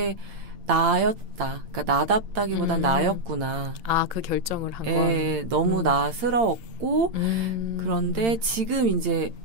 나였다. 그러니까 나답다기보단 나였구나. 그 결정을 한 거. 너무 나스러웠고 그런데 지금 이제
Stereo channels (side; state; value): left; late; 8.8 ms